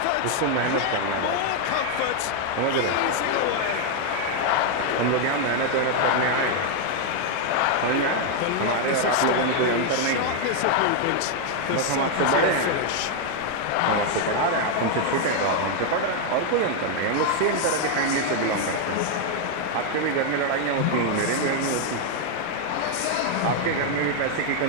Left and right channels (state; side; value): different; both; correlation 0.00